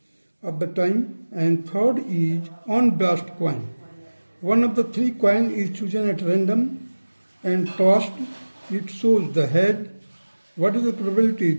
of the time. And third is unbiased coin. One of the three coins is chosen at random and tossed. It shows the head. What is the probability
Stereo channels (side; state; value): both; inverted; correlation -1.00